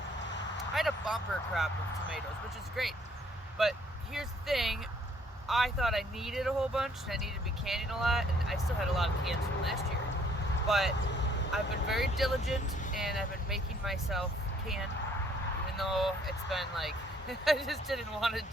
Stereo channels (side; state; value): both; normal; correlation 0.62